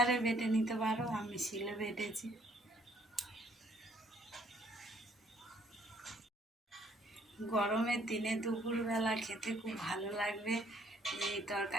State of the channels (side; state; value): both; normal; correlation 0.63